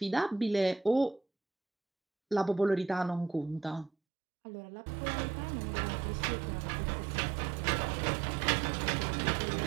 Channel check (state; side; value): drops out; left; at 3.9 s